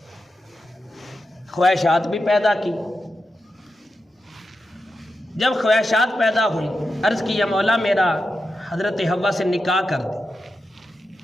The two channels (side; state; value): both; normal; correlation 0.89